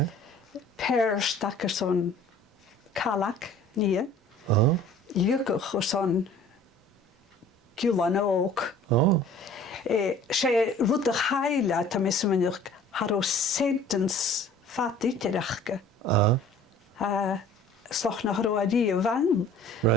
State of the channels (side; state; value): both; normal; correlation 0.49